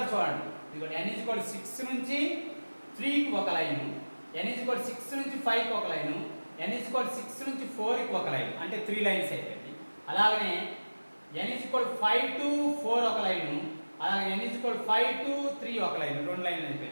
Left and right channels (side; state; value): both; inverted; correlation -1.00